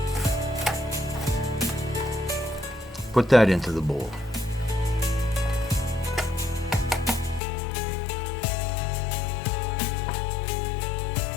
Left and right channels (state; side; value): drops out; right; at 7.4 s